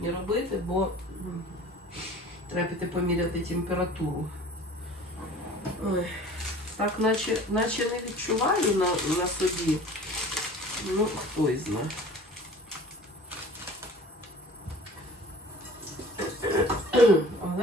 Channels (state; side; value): normal; both; correlation 0.44